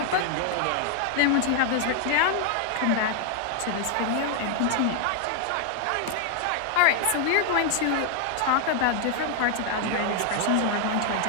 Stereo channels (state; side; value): different; both; correlation 0.00